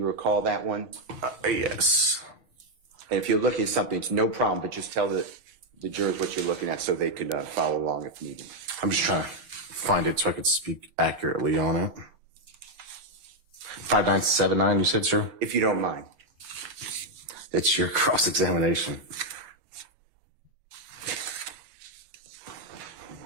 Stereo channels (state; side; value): late; left; 7.6 ms